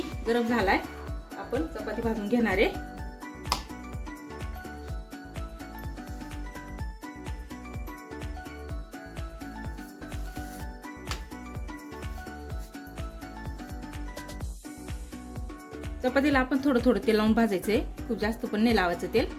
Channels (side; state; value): both; identical; correlation 1.00